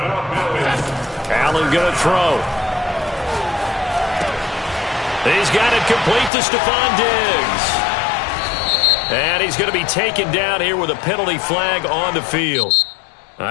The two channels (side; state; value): right; drops out; at 6.3 s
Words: Allen going to throw. He's got it complete to Stephon Diggs. And he's going to be taken down here with a penalty flag on the field.